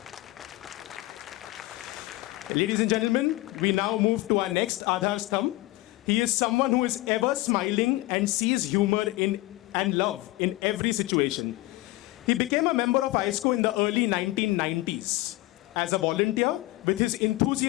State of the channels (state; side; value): quieter; right; 18.9 dB